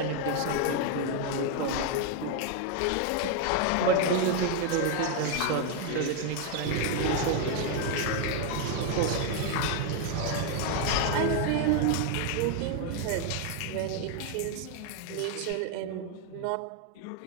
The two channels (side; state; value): both; different; correlation 0.01